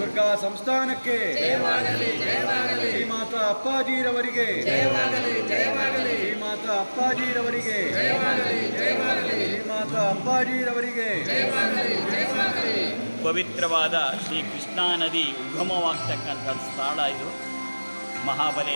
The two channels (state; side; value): inverted; both; correlation -1.00